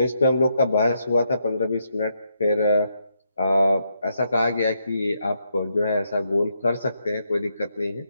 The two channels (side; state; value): both; inverted; correlation -0.79